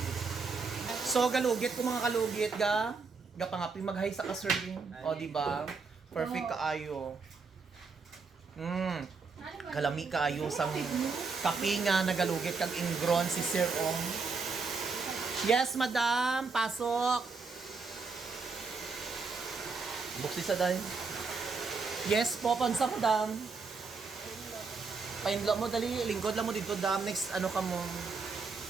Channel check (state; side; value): quieter; left; 4.6 dB